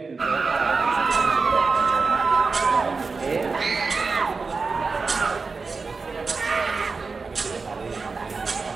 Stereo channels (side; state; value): left; quieter; 4.4 dB